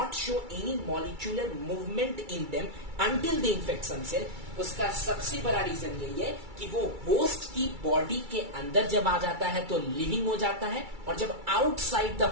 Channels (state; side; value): late; left; 2.3 ms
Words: show any molecular movement in them until they infect some cell, उसका सबसे बड़ा रीजन यही है कि वो होस्ट की बॉडी के अंदर जब आ जाता है तो लिविंग हो जाता है, और जब आउटसाइड द